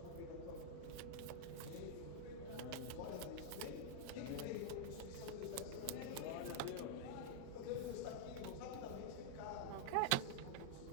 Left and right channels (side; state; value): both; different; correlation -0.01